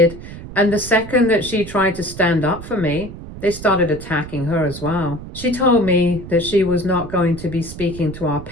and the second that she tried to stand up for me, they started attacking her as well. She told me that she was not going to be speaking to our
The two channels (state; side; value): noise; right; rumble, 12 dB below the sound